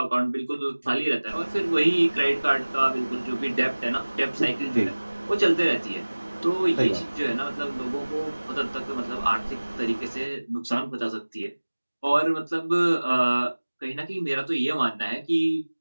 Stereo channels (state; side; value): inverted; both; correlation -1.00